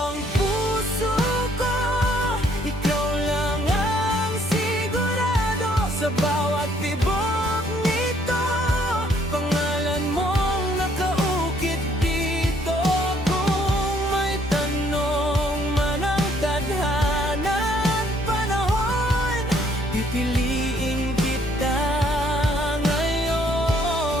ang puso ko, ikaw lang ang sigurado. Sa bawat tibok nito, pangalan mong nakaukit dito. Kung may tanong man ang tadhana at panahon, pipiliin kita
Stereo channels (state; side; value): normal; both; correlation 0.65